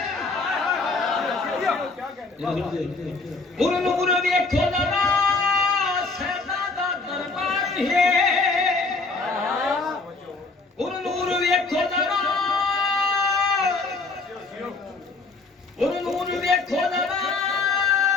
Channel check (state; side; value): quieter; right; 3.8 dB